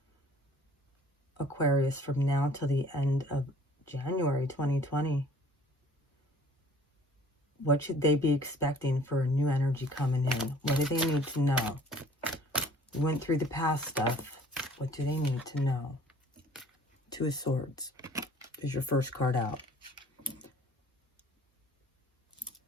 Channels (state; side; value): normal; both; correlation 0.53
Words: Aquarius from now till the end of January 2020? What should they be expecting for a new energy coming in? What do they need to know? We went through the past stuff. What do they need to know? 2 of Swords is your first card out.